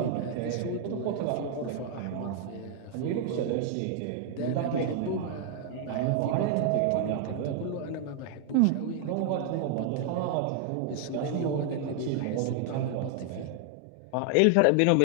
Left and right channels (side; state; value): both; different; correlation 0.00